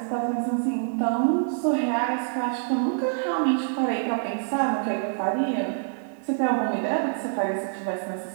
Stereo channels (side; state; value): left; silent; 61 dB below the other